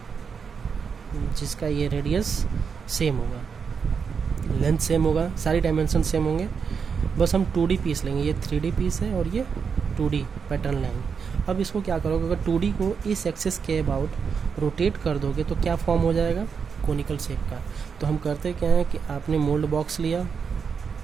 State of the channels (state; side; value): quieter; left; 6.1 dB